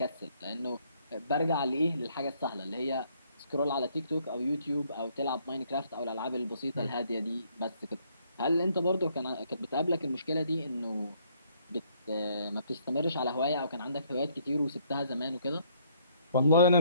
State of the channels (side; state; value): both; inverted; correlation -0.67